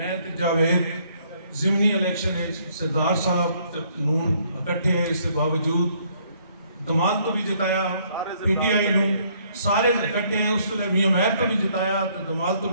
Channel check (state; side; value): inverted; both; correlation -0.66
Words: جاوید ضمنی الیکشن ہے سردار صاحب نون اکٹھے ہیں، اس کے باوجود دمال تو بھی جتایا، پی ٹی آئی نو سارے اکٹھے ہیں، اس نے میاں مہر تو بھی جتایا، دمال تو